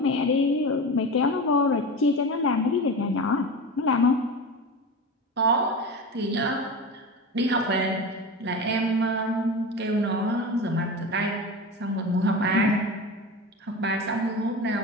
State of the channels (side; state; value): both; normal; correlation 0.27